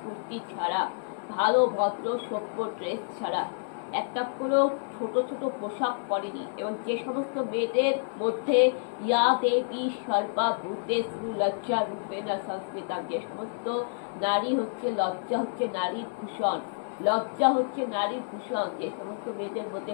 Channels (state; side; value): silent; right; digital silence